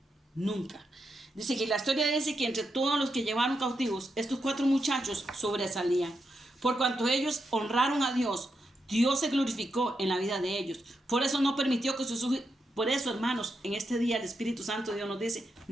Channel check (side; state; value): both; normal; correlation 0.84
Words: nunca. Dice que la historia dice que entre todos los que llevaron cautivos, estos 4 muchachos sobresalían. Por cuanto ellos honraron a Dios, Dios se glorificó en la vida de ellos. Por eso no permitió que sus hijos, por eso, hermanos, en este día el Espíritu Santo de Dios nos dice,